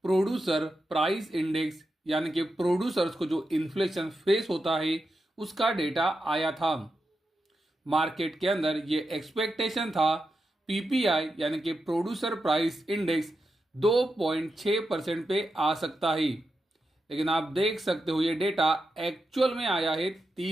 प्रोड्यूसर प्राइस इंडेक्स यानी कि प्रोड्यूसर्स को जो इन्फ्लेशन फेस होता है उसका डेटा आया था। मार्केट के अंदर ये एक्सपेक्टेशन था पीपीआई यानी कि प्रोड्यूसर प्राइस इंडेक्स 2.6% पे आ सकता है, लेकिन आप देख सकते हो ये डेटा एक्चुअल में आया है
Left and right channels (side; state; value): both; normal; correlation 0.88